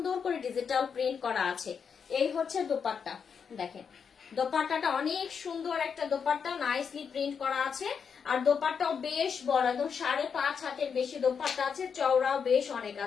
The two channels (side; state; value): right; quieter; 6.5 dB